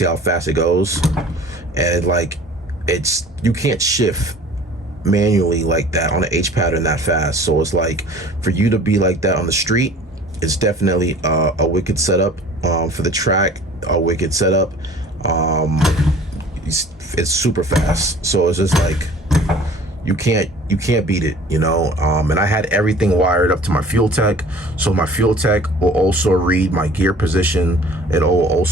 how fast it goes. And you can't shift manually like that on an H pattern that fast. So it's like, for you to be like that on the street, it's definitely a wicked setup. For the track, a wicked setup. It's super fast, so it's just like you can't beat it, you know. And I had everything wired up to my fuel tech, so my fuel tech will also read my gear position. It'll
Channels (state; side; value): normal; both; correlation 0.48